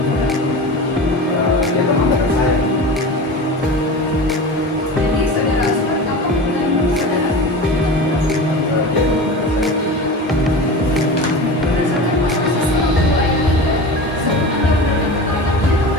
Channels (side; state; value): both; normal; correlation 0.31